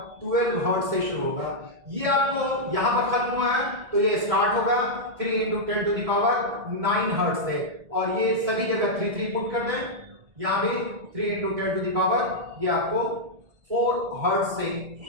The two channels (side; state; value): left; late; 1.7 ms